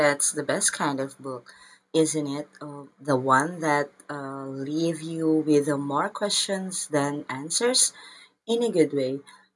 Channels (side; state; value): both; identical; correlation 1.00